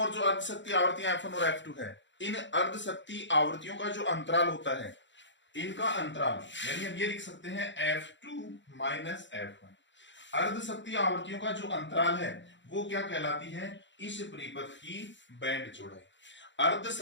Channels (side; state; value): right; late; 0.53 ms